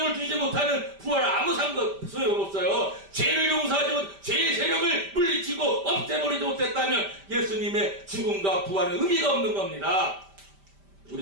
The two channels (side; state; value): left; late; 5.1 ms